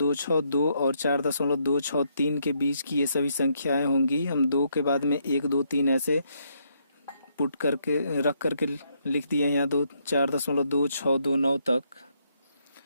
और 4.263 के बीच की ये सभी संख्याएं होंगी। हम 2 के बाद में 1, 2, 3 ऐसे पुट करके रख करके लिख दिए यहाँ 4.2629 तक।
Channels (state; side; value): inverted; both; correlation -0.74